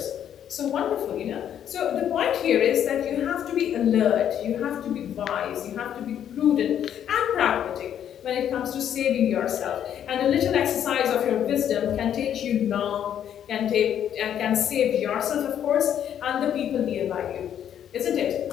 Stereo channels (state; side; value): quieter; right; 9.7 dB